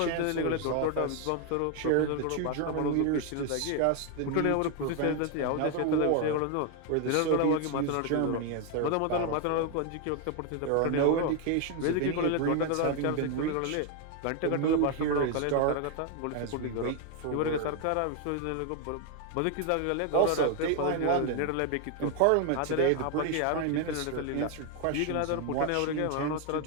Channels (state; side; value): different; both; correlation 0.01